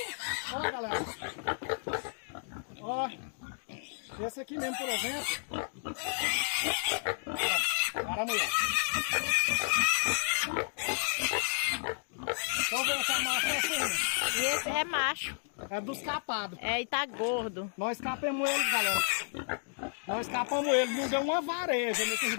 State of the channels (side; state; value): right; silent; digital silence